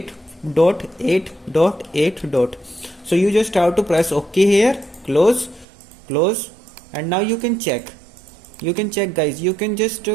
So you just have to press OK here, close, and now you can check guys. You can just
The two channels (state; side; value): drops out; left; at 5.7 s